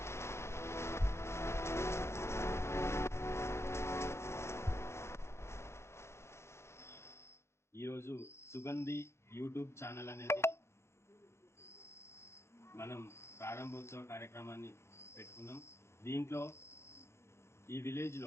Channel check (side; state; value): right; late; 0.13 ms